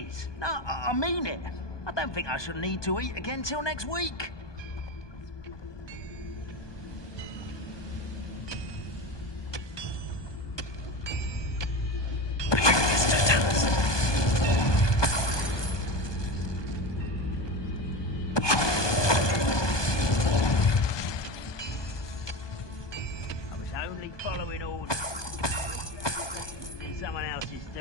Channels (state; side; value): late; right; 1.2 ms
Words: No, I mean it. I don't think I shall need to eat again till next week. Following orders in someone else's